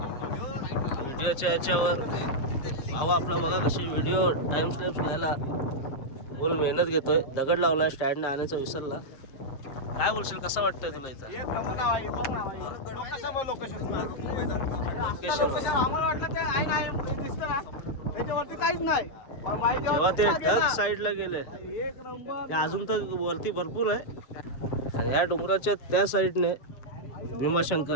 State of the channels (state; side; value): late; right; 7.5 ms